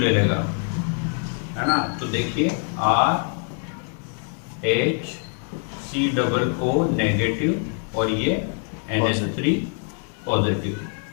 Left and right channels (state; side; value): quieter; right; 39.4 dB